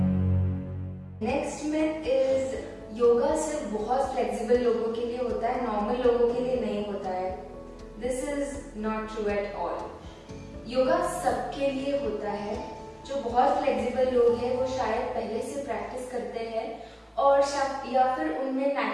Next myth is yoga सिर्फ बहुत फ्लेक्सिबल लोगों के लिए होता है, नॉर्मल लोगों के लिए नहीं होता है। This is not true at all. Yoga सबके लिए होता है। जो बहुत फ्लेक्सिबल लोग हैं वो शायद पहले से प्रैक्टिस करते हैं और या फिर उनमें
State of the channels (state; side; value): identical; both; correlation 1.00